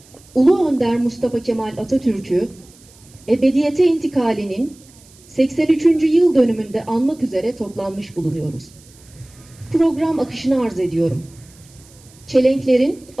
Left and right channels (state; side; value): noise; right; hiss, 26 dB below the sound